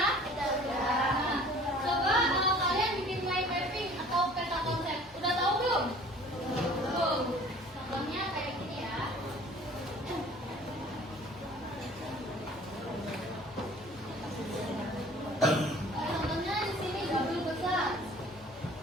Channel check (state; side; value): normal; both; correlation 0.49